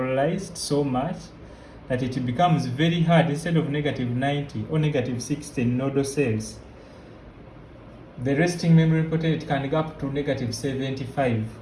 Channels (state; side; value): identical; both; correlation 1.00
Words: so much that it becomes very hard. Instead of negative 90 or negative 60 in nodal cells, the resting membrane potential can go up to negative 75.